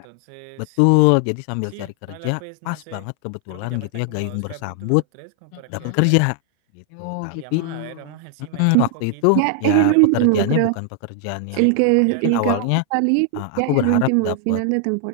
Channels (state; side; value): different; both; correlation 0.00